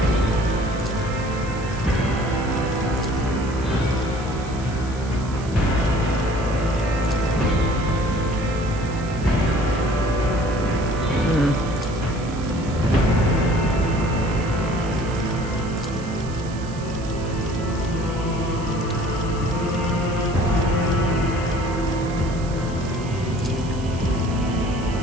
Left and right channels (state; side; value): noise; right; hiss, 19 dB below the sound